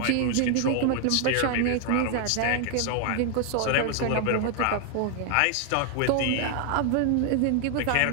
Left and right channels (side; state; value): both; different; correlation 0.00